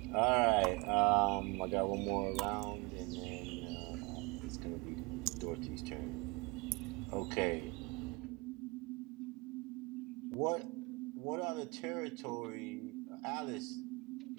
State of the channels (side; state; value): left; quieter; 26.3 dB